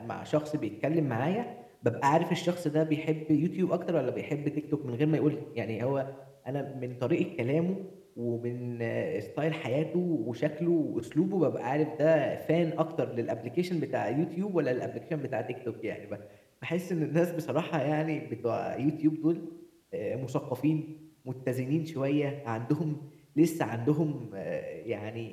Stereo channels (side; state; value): both; identical; correlation 1.00